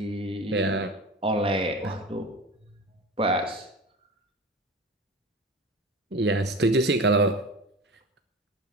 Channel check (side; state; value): both; normal; correlation 0.31